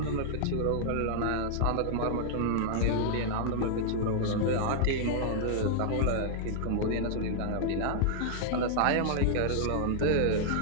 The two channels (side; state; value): both; different; correlation -0.01